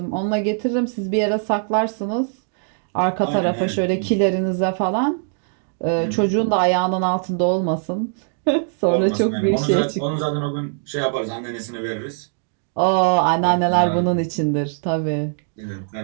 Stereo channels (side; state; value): left; silent; digital silence